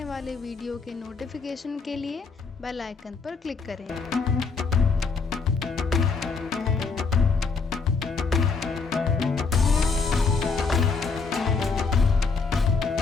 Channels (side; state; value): right; quieter; 4.6 dB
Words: वाले वीडियो के नोटिफिकेशन के लिए बेल आइकन पर क्लिक करें।